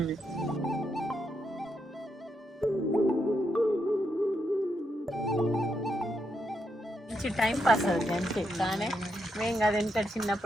టైం పాస్ అవుతుంది అంతే కానీ మేము కదా ఎంత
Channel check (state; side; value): normal; both; correlation 0.81